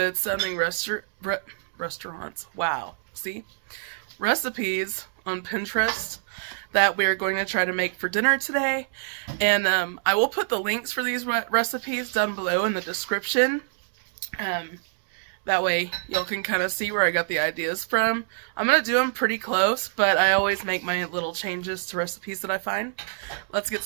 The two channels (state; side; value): silent; left; 61 dB below the other